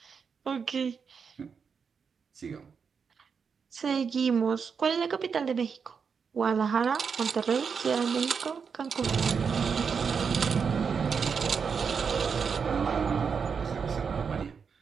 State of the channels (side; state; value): left; quieter; 6.1 dB